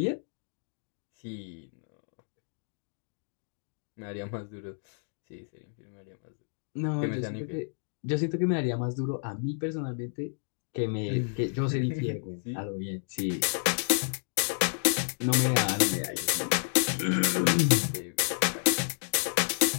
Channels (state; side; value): silent; right; digital silence